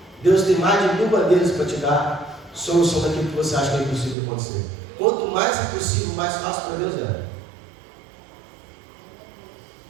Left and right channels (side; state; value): left; drops out; at 4.2 s